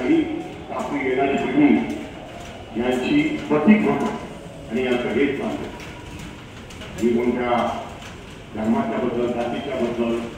तर आपली येणारी पिढी यांची प्रतीक होतं आणि यांचं हेच चालतं. मी कोणत्या धर्माच्या बद्दल, जातीच्या बद्दल,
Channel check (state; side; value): identical; both; correlation 1.00